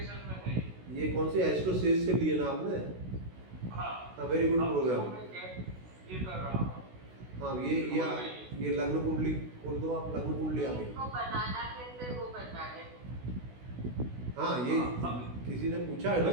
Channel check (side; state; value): left; late; 16 ms